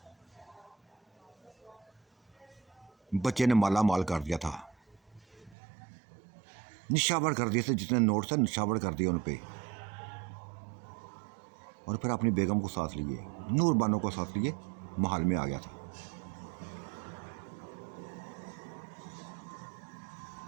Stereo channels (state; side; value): drops out; left; at 5.6 s